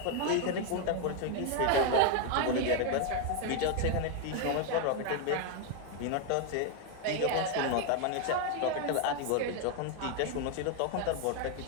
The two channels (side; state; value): both; different; correlation 0.01